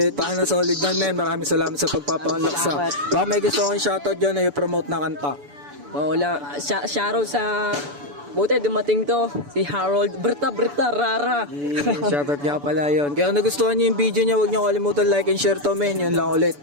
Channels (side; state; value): left; late; 6.9 ms